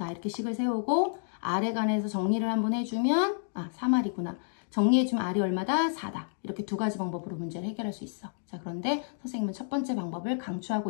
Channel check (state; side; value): silent; right; digital silence